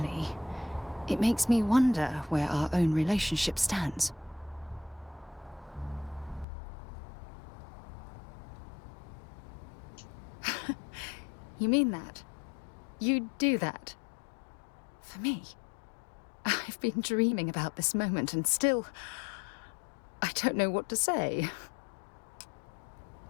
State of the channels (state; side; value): drops out; right; at 6.5 s